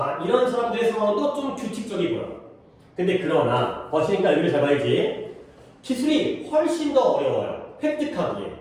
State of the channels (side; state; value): both; identical; correlation 1.00